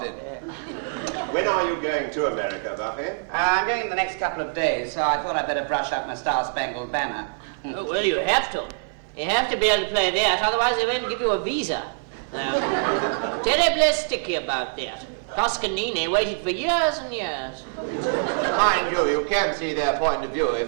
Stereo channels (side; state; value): left; silent; 57 dB below the other